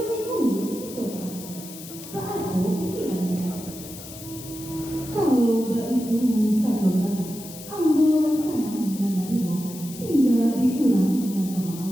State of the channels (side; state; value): left; noise; hiss, 14 dB below the sound